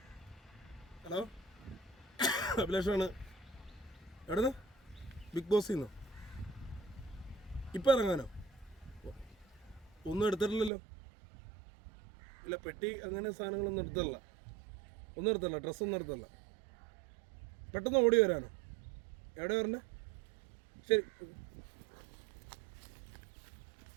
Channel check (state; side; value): drops out; left; at 10.7 s